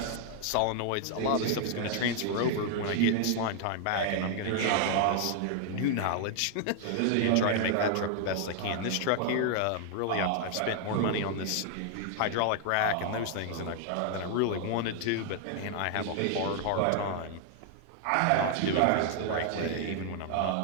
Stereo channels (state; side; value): different; both; correlation 0.00